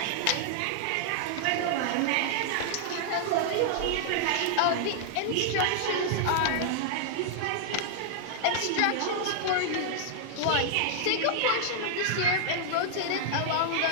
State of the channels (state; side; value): different; both; correlation -0.01